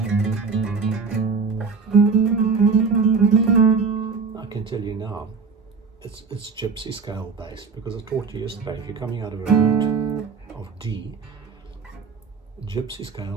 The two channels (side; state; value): left; quieter; 5.0 dB